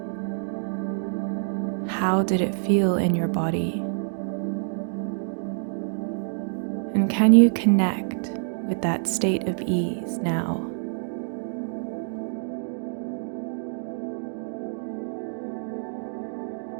How did it feel in your body? And can you connect with that state of ease now?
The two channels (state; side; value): silent; left; digital silence